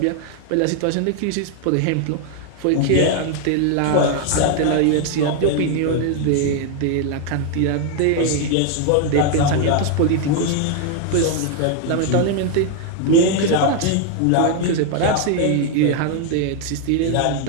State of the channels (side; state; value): both; different; correlation 0.00